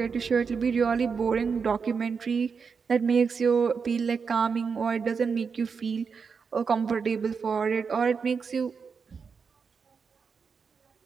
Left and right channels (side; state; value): left; quieter; 5.7 dB